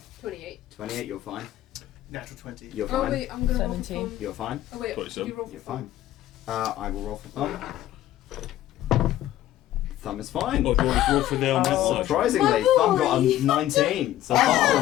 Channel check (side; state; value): right; quieter; 13.6 dB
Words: 28. 28. You're fine. natural 20. You're Oh fine. wait, I'm gonna roll 17. for fun. You're fine. Oh wait, 27. you roll for You're fun. fine. I will roll for Thumb. Thumb is fine. Oh, do you want to roll for the elemental? Surprisingly, My Thumb got a boy. 19, so Thumb's